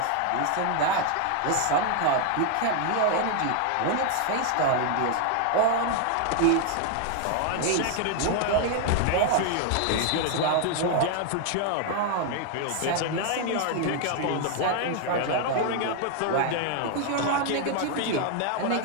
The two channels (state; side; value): different; both; correlation 0.00